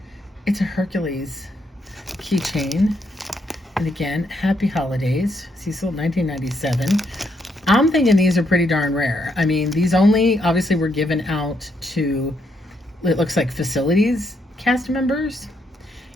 It's a Hercules keychain. And again, happy holidays. Cecil, 1997. I'm thinking these are pretty darn rare. I mean, these only obviously were given out to, it looks like, facilities cast members.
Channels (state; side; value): normal; both; correlation 0.76